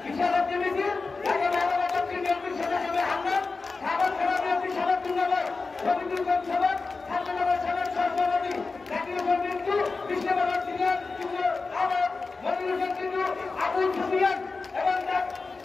বিশাল একটি মিছিল, ঢাকা মহানগর দক্ষিণ বিএনপির সদস্য হামলা, সাধারণ থানা বিএনপি সাধারণ রবীন্দ্রনাথ সভার সাধারণ সাধারণ সভাপতি জাকির হোসেন বিন্দু, কৃষ্ণনগর সিনিয়র আমার মনির হোসেন বিন্দু, আবুল সুফিয়ান এবং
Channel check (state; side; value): quieter; right; 4.1 dB